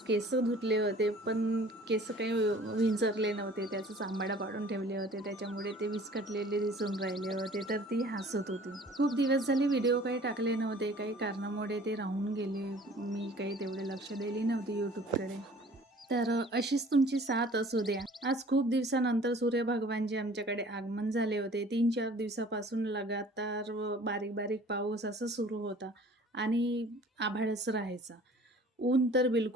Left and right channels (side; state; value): both; normal; correlation 0.49